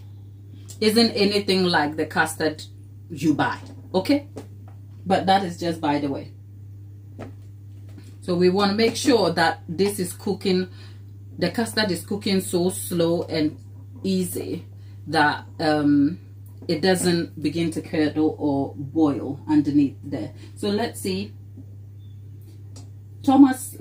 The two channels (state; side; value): identical; both; correlation 1.00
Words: the custard you buy, okay? But that is just by the way. So we want to make sure that this is cooking, the custard is cooking so slow and easy that it doesn't begin to curdle or boil underneath there. So let's see. Thomas